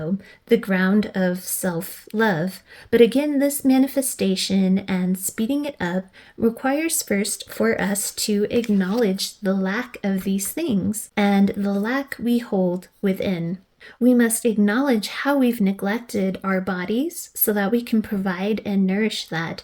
the ground of self-love. But again, this manifestation and speeding it up requires first for us to acknowledge the lack of these things and the lack we hold within. We must acknowledge how we've neglected our bodies so that we can provide and nourish that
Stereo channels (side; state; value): both; identical; correlation 1.00